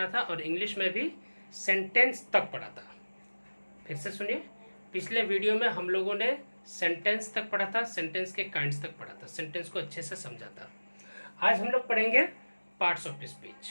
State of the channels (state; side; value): inverted; both; correlation -1.00